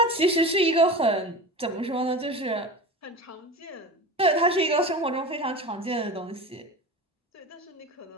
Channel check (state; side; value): normal; both; correlation 0.31